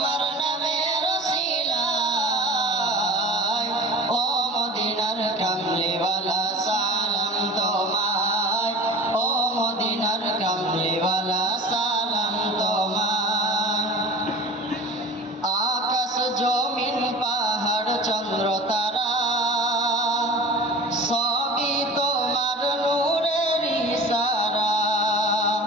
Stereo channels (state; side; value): normal; both; correlation 0.38